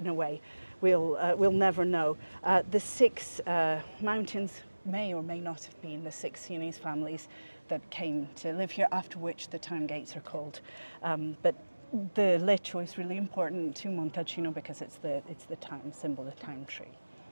a way, we'll never know. The 6 mountains may or may not have been the 6 Sienese families that came to live here, after which the town gates are called. But the Leccio is really important to Montalcino because it's the town symbol, the town tree.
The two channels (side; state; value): both; inverted; correlation -1.00